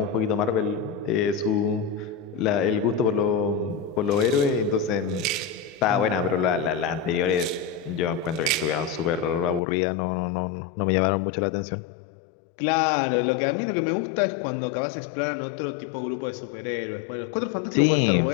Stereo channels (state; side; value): drops out; right; at 9.6 s